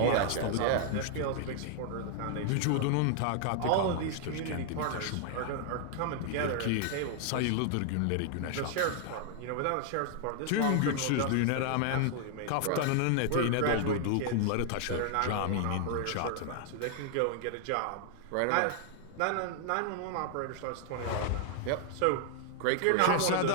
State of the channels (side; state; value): both; different; correlation 0.00